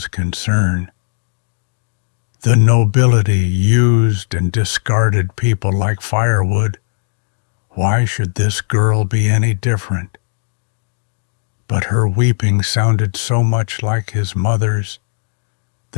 concern. The nobility used and discarded people like firewood. Why should this girl be any different? But her weeping sounded so much like his mother's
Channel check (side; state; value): right; silent; digital silence